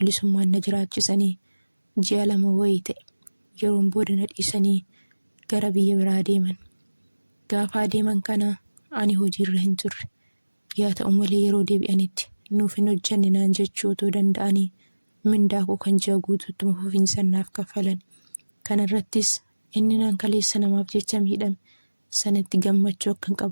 na jiraachisanii ji'a 2 wayii ta'e. Yeroon booda na dhiisanii gara biyya biraa deeman. Gaafa adeeman kana ani hojiirra hin turre. Yaa ta'u malee yeroo deebi'anitti nuuf hin hojjenne naan jechuu otoo danda'anii mindaa koo kan ji'a guutuutti fufiinsaan naaf kaffalan. Kana irrattis inni nan kaleessa namaaf jecha miidhame sanatti gammachuu akkan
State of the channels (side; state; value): both; inverted; correlation -1.00